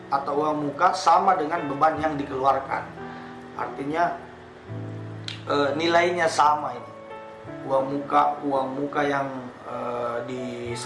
sama dengan beban yang dikeluarkan. Artinya nilainya sama ini. Uang muka yang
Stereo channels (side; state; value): both; identical; correlation 1.00